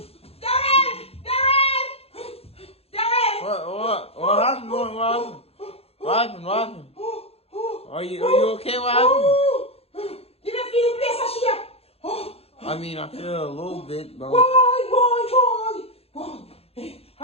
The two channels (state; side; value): late; right; 0.29 ms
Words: What happened? What happened? Are you okay? What happened? You don't feel the place of shit? I mean, I feel a little bit, bro. Boy. An